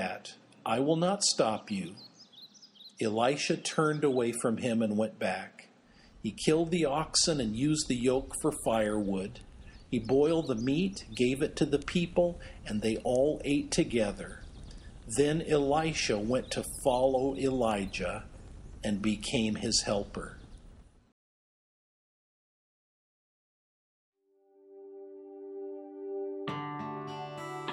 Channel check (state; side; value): identical; both; correlation 1.00